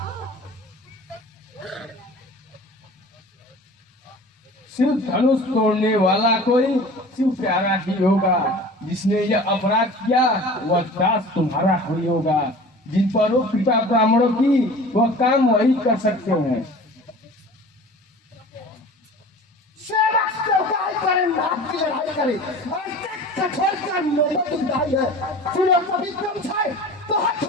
शिव धनुष तोड़ने वाला कोई शिव प्यारा ही होगा जिसने यह अपराध किया वह दास तुम्हारा ही होगा जिन पर वो कृपा ब्राह्मणों की वह काम वही कर सकते हैं। सेवक सेवकाई करे नाथ की लड़ाई करे कठोर का नौबत उठाई है सुनो कभी कम छाए तो हाथ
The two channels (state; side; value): normal; both; correlation 0.42